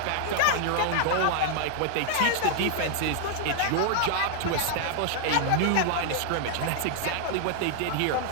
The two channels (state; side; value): different; both; correlation 0.00